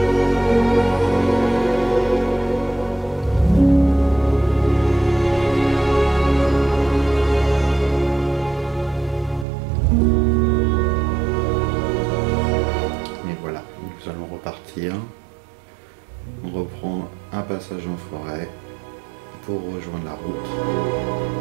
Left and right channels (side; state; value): left; drops out; at 9.5 s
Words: Et voilà, nous allons repartir. On reprend un passage en forêt pour rejoindre la route.